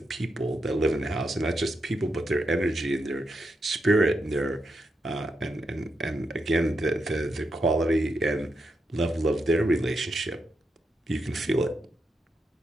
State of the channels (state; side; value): normal; both; correlation 0.84